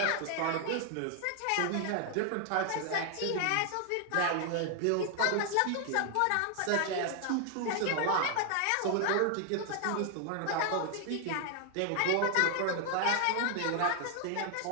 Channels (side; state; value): both; different; correlation 0.00